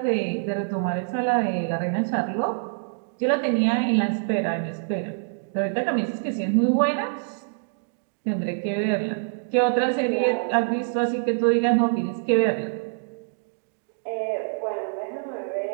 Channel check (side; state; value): left; silent; digital silence